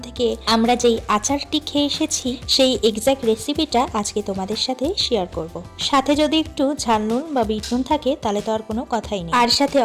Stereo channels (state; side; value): identical; both; correlation 1.00